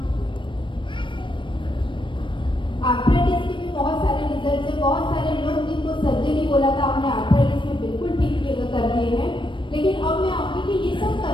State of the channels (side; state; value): right; late; 0.24 ms